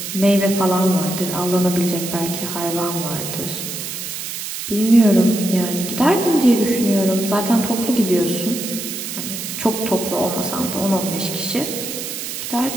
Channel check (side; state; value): right; noise; hiss, 6 dB below the sound